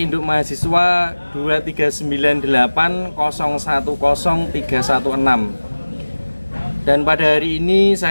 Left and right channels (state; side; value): inverted; both; correlation -1.00